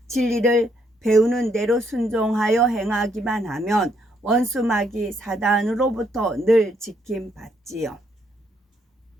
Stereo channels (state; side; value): normal; both; correlation 0.72